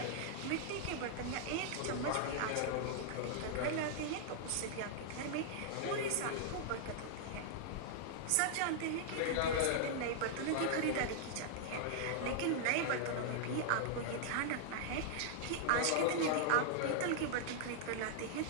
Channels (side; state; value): both; different; correlation -0.01